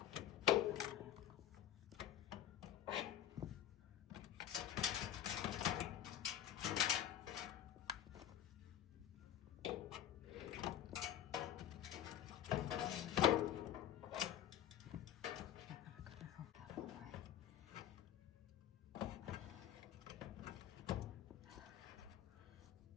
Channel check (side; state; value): right; quieter; 10.9 dB